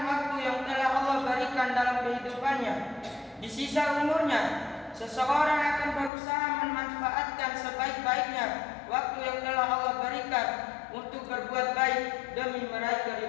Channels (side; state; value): right; drops out; at 6.1 s